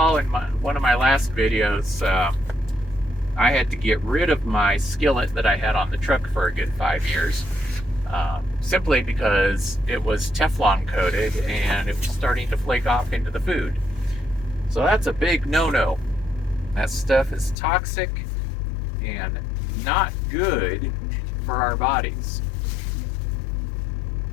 in one of my last videos, I had to get rid of my skillet that I had on the truck for a good 5 years. Simply because it was Teflon coated and it was starting to flake off into the food. So that's a big no-no. That stuff is toxic and not good for our bodies.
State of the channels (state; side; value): drops out; right; at 17.6 s